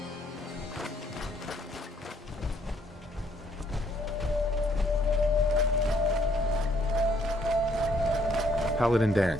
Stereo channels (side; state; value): both; normal; correlation 0.67